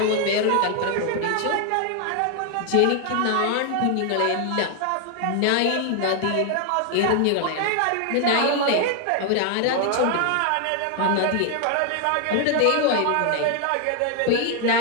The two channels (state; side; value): different; both; correlation 0.00